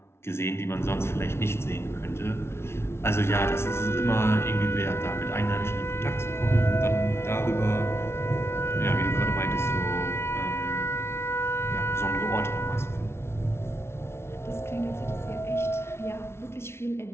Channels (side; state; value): right; late; 0.12 ms